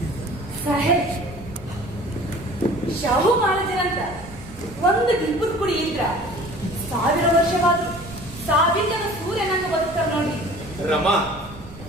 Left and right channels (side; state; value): right; noise; rumble, 17 dB below the sound